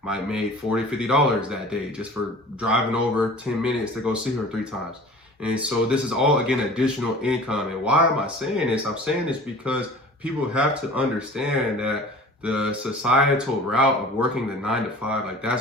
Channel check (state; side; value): normal; both; correlation 0.43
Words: Might make $40, $50 that day just for driving over 10 minutes to go see her 3 times. And so this is all, again, additional income. And why am I saying this? I'm saying this because people have to understand that the societal route of working the 9 to 5, like